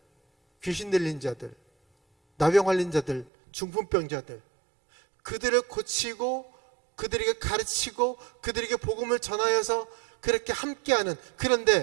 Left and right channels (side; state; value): left; drops out; at 3.3 s